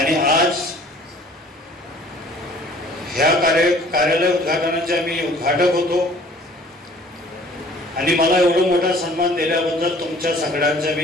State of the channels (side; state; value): both; normal; correlation 0.52